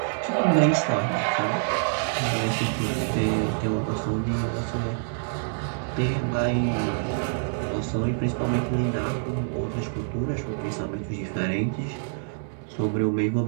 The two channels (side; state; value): left; silent; digital silence